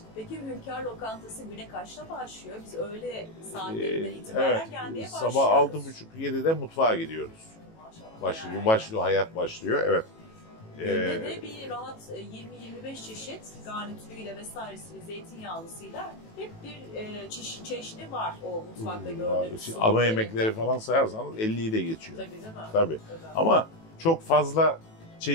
Peki Hünkar Lokantası güne kaçta başlıyor? Biz öğle saatlerinden itibaren gelmeye başlıyoruz. Sabah 6.30-7'de mutfağa gidiyoruz. Başlıyor, hayat başlıyor. Evet. Günde de bir rahat 20-25 çeşit garnitürüyle vesairesiyle, zeytinyağlısıyla hep bir çeşidi var o mutfakta gördüğünüz. Ana yemekleri falan sayarsanız 50'yi de geçiyor. Tabii değil mi? Tabii. Ama çok fazla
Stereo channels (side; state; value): right; late; 18 ms